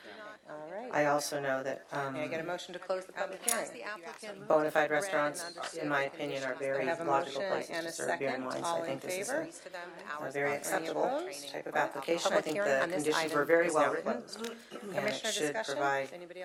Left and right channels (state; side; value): identical; both; correlation 1.00